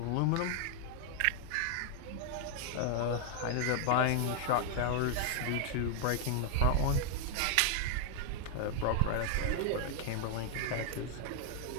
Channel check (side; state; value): both; different; correlation 0.00